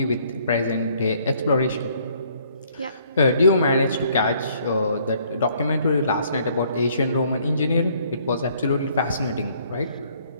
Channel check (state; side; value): inverted; both; correlation -0.64